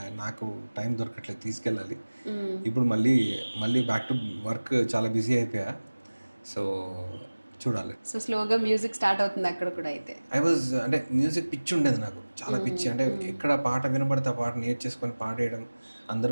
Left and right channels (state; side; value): inverted; both; correlation -1.00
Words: నాకు టైం దొరకట్లేదు, తీసుకెళ్ళాలి. ఇప్పుడు మళ్ళీ బ్యాక్ టు వర్క్, చాలా బిజీ అయిపోయా. సో చూడాలి. సో స్లోగా మ్యూజిక్ స్టార్ట్ అవుతుంది అక్కడ కూడా అయితే? అంటే మ్యూజిక్ పిచ్చి ఉండేది నాకు, చాలా పిచ్చి. అంటే ఎక్కడ పాట వినబడితే ఆ పాట నేర్చేసుకొని పాడేయడం,